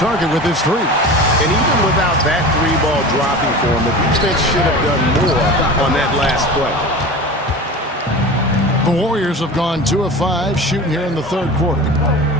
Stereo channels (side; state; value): both; normal; correlation 0.33